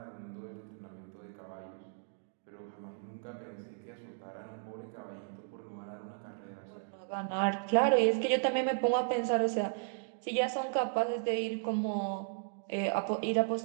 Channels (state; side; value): silent; left; digital silence